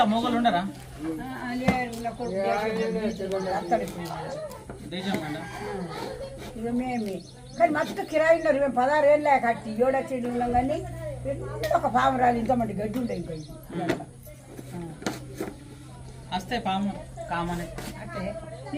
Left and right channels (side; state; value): both; identical; correlation 1.00